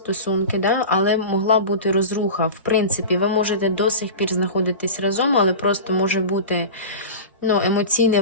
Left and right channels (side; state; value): both; inverted; correlation -0.30